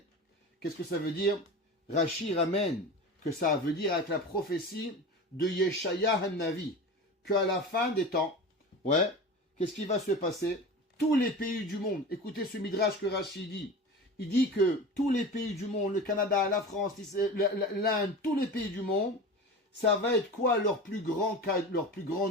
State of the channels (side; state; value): both; normal; correlation 0.31